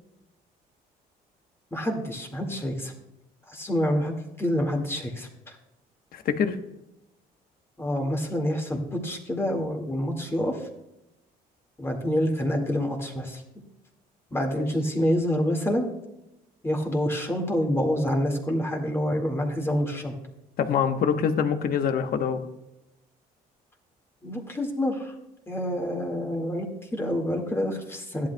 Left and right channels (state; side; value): normal; both; correlation 0.73